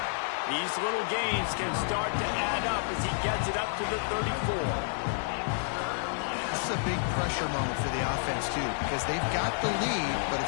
These little gains can start to add up as he gets it up to the 34. This is a big pressure moment for the offense, too, because they've got the lead, but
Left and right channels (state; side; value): silent; right; 58 dB below the other